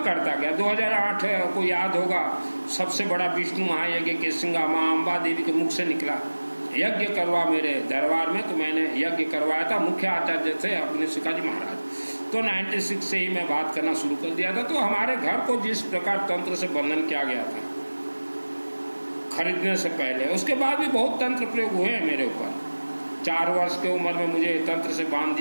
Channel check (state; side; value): inverted; both; correlation -1.00